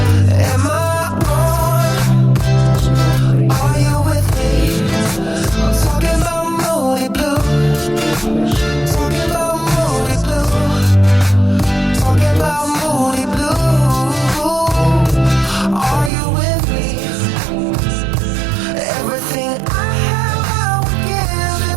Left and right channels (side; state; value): left; drops out; at 16.1 s